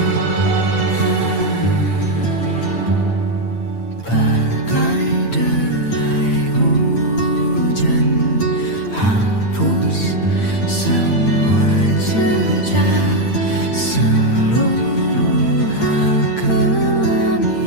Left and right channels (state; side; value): late; right; 8.8 ms